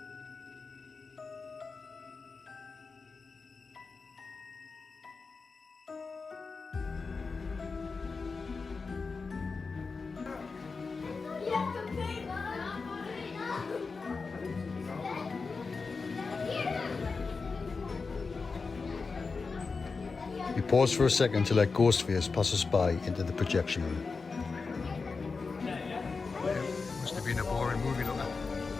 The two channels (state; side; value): quieter; right; 4.5 dB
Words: We pause for a second to let Ghostface pass us by into the projection room. Must have been a boring movie, looker.